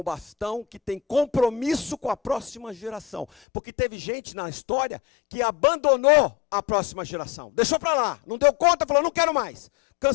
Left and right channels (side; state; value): right; drops out; at 3.2 s